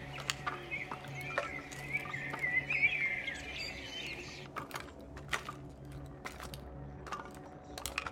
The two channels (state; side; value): identical; both; correlation 1.00